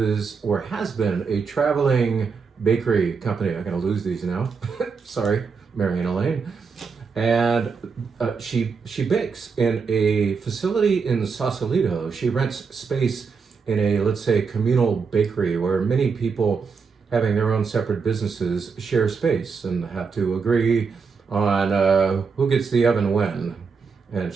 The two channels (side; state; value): left; quieter; 5.4 dB